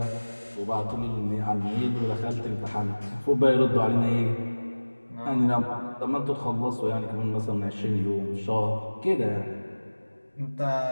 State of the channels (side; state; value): both; inverted; correlation -1.00